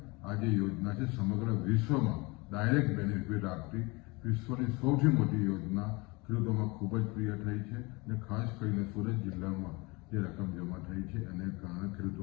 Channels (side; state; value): right; quieter; 25.8 dB